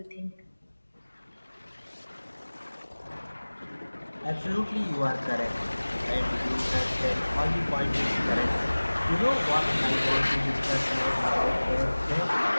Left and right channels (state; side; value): inverted; both; correlation -1.00